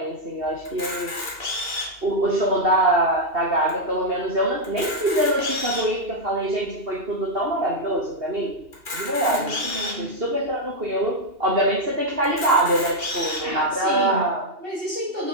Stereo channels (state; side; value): late; left; 2.8 ms